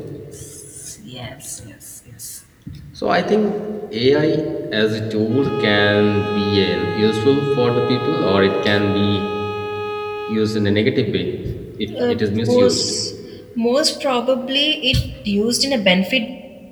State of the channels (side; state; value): both; identical; correlation 1.00